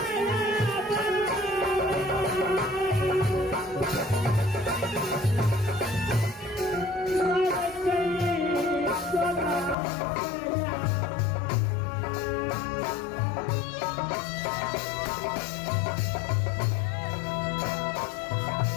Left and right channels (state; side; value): drops out; right; at 9.8 s